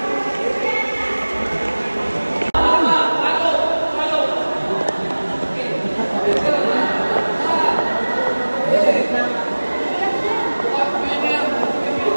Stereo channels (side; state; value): both; inverted; correlation -1.00